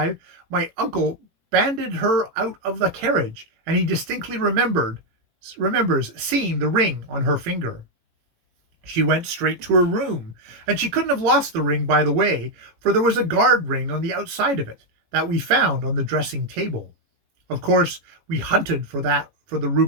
my uncle banded her out of the carriage, and he distinctly remembers seeing the ring on her finger. She went straight to her room, and she couldn't have lost the ring by the way, for there was a guard ring on the outside of it that we found on the dressing table. Of course, we hunted for the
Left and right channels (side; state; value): left; late; 18 ms